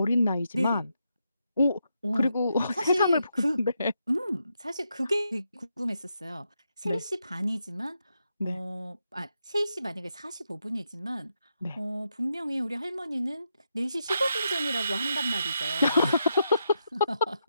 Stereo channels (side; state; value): both; inverted; correlation -0.83